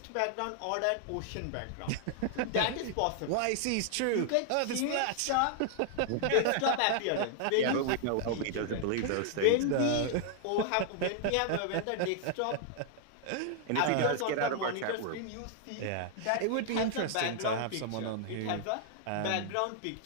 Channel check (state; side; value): different; both; correlation 0.00